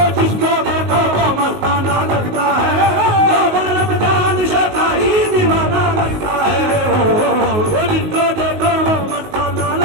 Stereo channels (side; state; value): left; late; 19 ms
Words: जिसको देखो वो मस्ताना लगता है, बाबा रमजान शाह का ही दीवाना लगता है। वो जिसको देखो वो मस्ताना